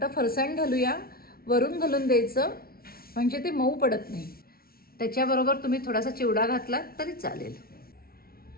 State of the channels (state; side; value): late; right; 0.44 ms